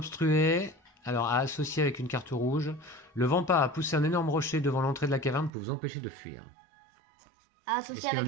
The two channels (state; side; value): drops out; left; at 5.5 s